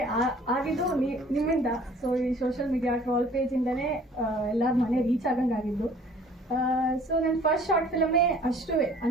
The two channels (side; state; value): both; normal; correlation 0.53